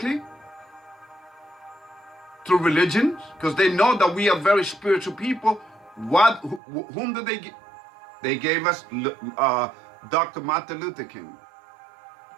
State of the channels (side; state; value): left; drops out; at 6.6 s